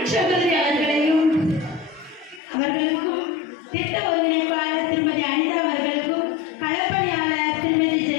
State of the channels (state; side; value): drops out; right; at 2.4 s